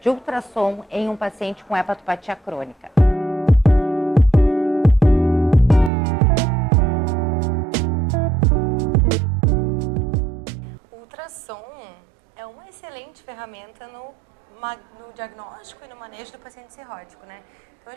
ultrassom em um paciente com hepatopatia crônica? O ultrassom é uma excelente ferramenta no diagnóstico e no manejo do paciente cirrótico, né? Então a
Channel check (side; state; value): left; drops out; at 5.9 s